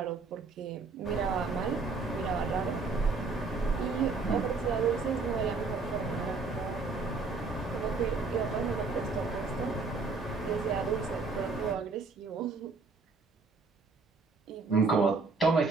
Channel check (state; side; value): quieter; left; 4.1 dB